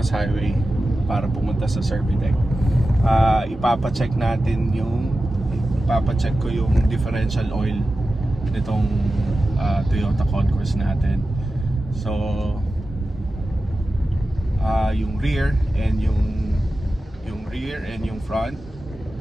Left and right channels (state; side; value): normal; both; correlation 0.93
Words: Highway para pumunta sa Servitec. Ipapacheck ko yung differential oil nitong Toyota Concourse natin. So yung rear and yung front,